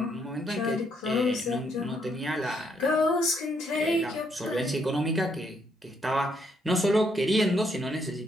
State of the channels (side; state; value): both; normal; correlation 0.73